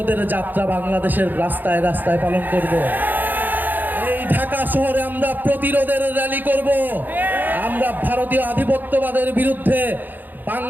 যাত্রা বাংলাদেশের রাস্তায় রাস্তায় পালন করব। এই ঢাকা শহরে আমরা প্রতিরোধের র্যালি করব। আমরা ভারতীয় আধিপত্যবাদের বিরুদ্ধে,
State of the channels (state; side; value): late; left; 0.087 ms